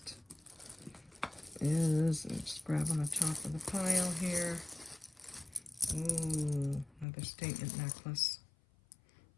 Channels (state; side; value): drops out; right; at 7.1 s